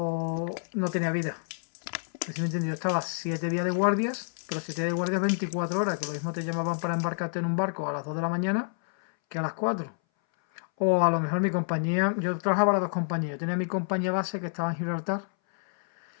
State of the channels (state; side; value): silent; right; 59 dB below the other